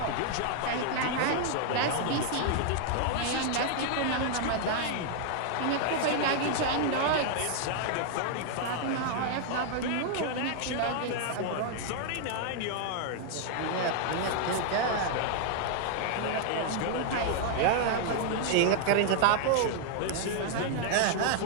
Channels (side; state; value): both; different; correlation 0.00